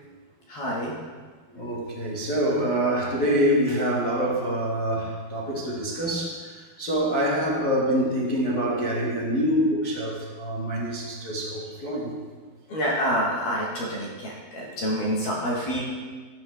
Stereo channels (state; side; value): late; right; 12 ms